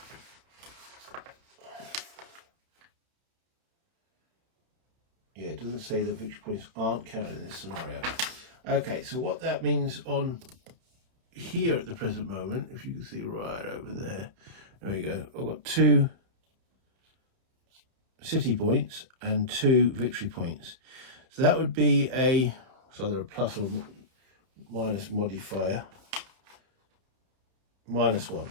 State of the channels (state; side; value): late; left; 31 ms